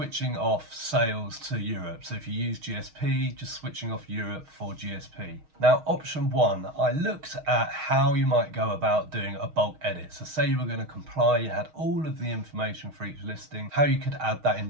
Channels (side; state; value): left; late; 6.4 ms